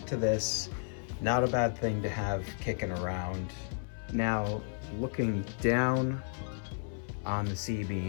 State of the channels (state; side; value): silent; right; 56 dB below the other